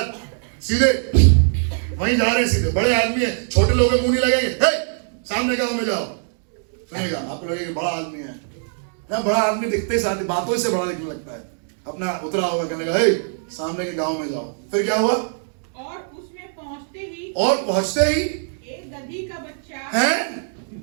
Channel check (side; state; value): left; silent; digital silence